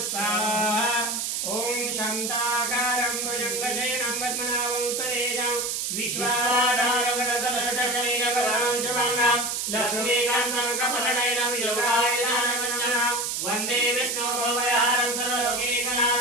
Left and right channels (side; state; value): right; noise; hiss, 1 dB below the sound